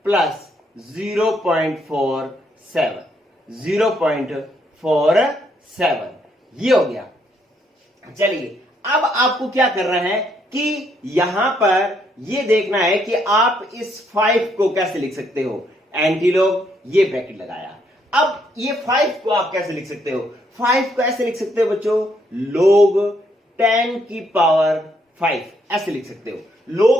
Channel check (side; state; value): both; normal; correlation 0.72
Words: प्लस 0.47 ये हो गया। चलिए अब आपको क्या करना है कि यहां पर ये देखना है कि आप इस 5 को कैसे लिख सकते हो। एंटीलॉग ये ब्रैकेट लगाया, अब ये 5 को आप कैसे लिख सकते हो, 5 को ऐसे लिख सकते हो बच्चों, log 10 की पावर 5 ऐसे लिख सकते हो।